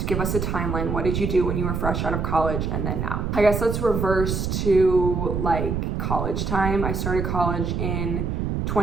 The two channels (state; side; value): noise; right; rumble, 1 dB below the sound